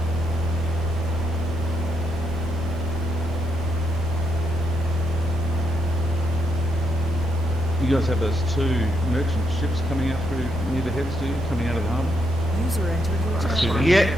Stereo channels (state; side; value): normal; both; correlation 0.78